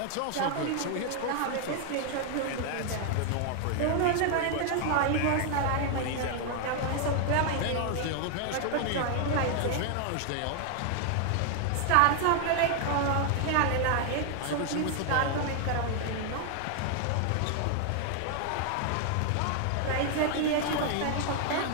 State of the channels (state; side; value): different; both; correlation 0.00